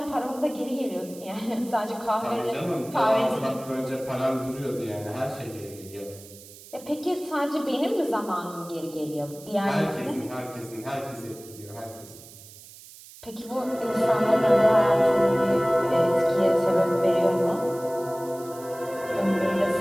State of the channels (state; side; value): noise; right; hiss, 19 dB below the sound